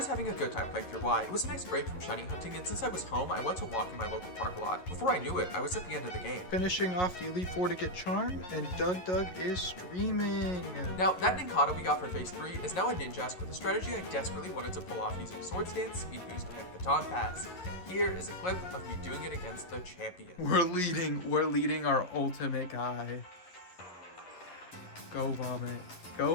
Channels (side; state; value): right; late; 11 ms